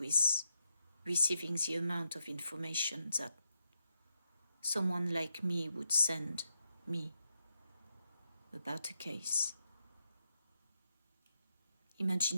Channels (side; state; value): both; inverted; correlation -0.84